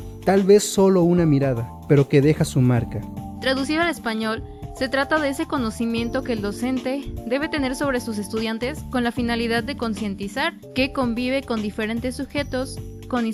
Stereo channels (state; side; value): identical; both; correlation 1.00